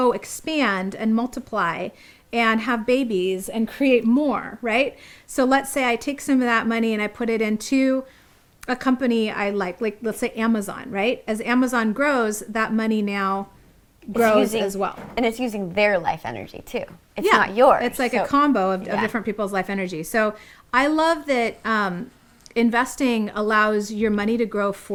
expand and multiply and have babies and create more, right? So let's say I take some of that money and I put it into a company I like let's say Amazon, right? As Amazon grows, that money now grows as well. And it's using their life energy too. It's not yours. It's like a combo of different people's life energy. So I love that investing allows your money to grow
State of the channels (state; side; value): identical; both; correlation 1.00